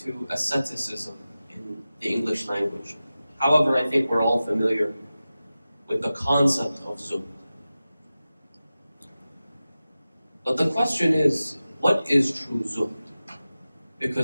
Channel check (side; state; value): both; inverted; correlation -0.95